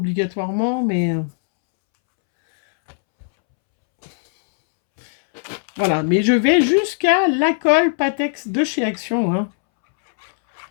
mais... Voilà, mais je vais jusqu'à la colle Patex de chez Action, hein.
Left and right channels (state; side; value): silent; right; 67 dB below the other